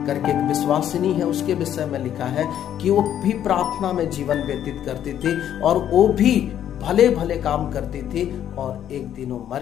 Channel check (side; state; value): right; quieter; 10.4 dB